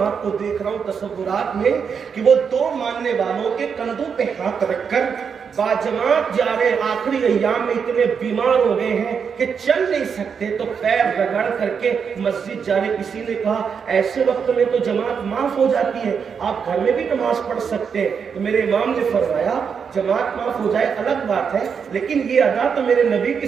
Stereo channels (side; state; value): left; quieter; 6.5 dB